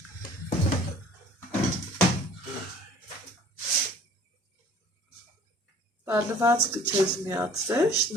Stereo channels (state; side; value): normal; both; correlation 0.50